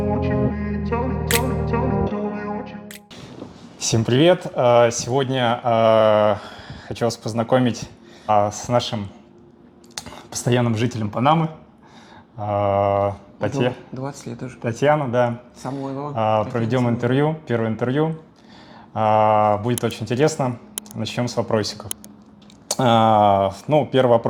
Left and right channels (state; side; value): identical; both; correlation 1.00